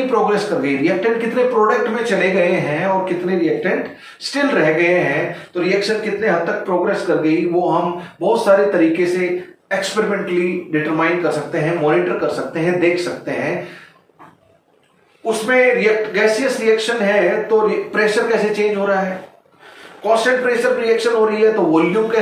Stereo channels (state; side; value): identical; both; correlation 1.00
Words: प्रोग्रेस कर गई, रिएक्टेंट कितने प्रोडक्ट में चले गए हैं और कितने रिएक्टेंट स्टिल रह गए हैं, तो रिएक्शन कितने हद तक प्रोग्रेस कर गई, वो हम बहुत सारे तरीके से एक्सपेरिमेंटली डिटरमाइन कर सकते हैं, मॉनिटर कर सकते हैं, देख सकते हैं। उसमें गैसियस रिएक्शन है तो प्रेशर कैसे चेंज हो रहा है, कांस्टेंट प्रेशर रिएक्शन हो रही है तो वॉल्यूम